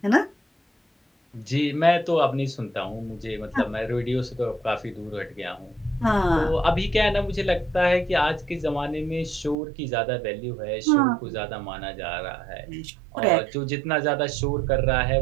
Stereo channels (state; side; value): drops out; left; at 9.6 s